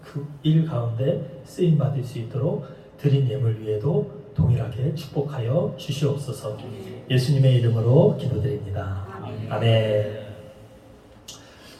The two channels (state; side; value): identical; both; correlation 1.00